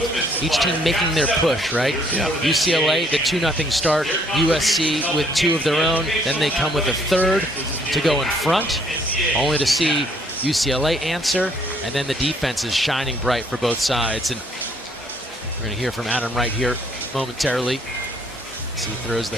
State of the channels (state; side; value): normal; both; correlation 0.65